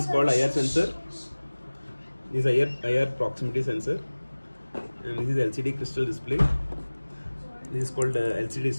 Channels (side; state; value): both; inverted; correlation -1.00